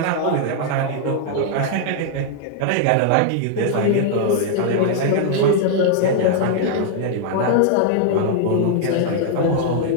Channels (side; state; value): both; different; correlation 0.00